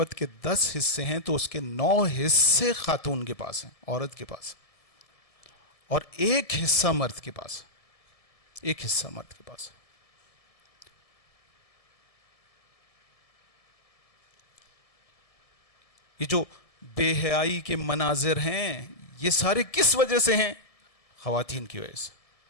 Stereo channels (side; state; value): right; late; 1.7 ms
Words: کے 10 حصے ہیں تو اس کے 9 حصے خاتون کے پاس ہیں، عورت کے پاس، اور 1 حصہ مرد کے پاس، 1 حصہ مرد کے پاس. یہ جو بے حیائی کے مناظر ہیں یہ سارے کس وجہ سے ہیں؟ خواتین کی وجہ سے.